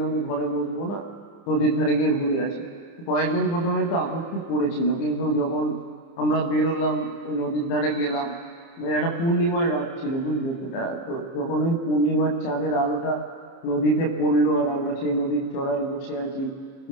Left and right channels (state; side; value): late; right; 30 ms